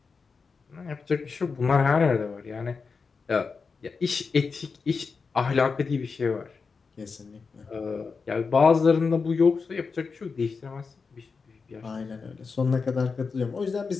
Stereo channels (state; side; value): quieter; right; 4.9 dB